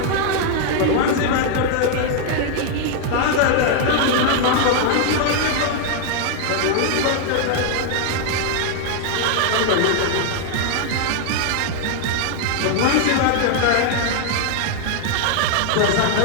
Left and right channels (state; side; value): different; both; correlation 0.00